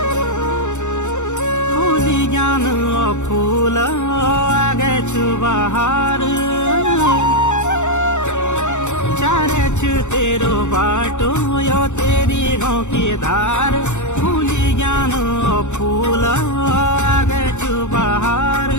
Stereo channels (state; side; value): late; right; 0.84 ms